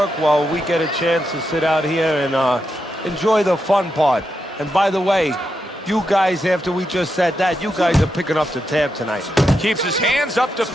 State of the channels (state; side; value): normal; both; correlation 0.85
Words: while we get a chance to sit out here and enjoy the fun part. And by the way, you guys, after we just said that, you guys are picking up the tab tonight. Keeps his hands up